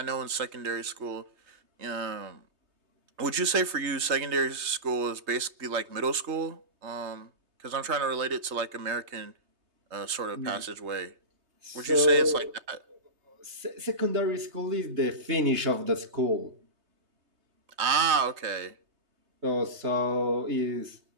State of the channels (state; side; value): late; left; 3.2 ms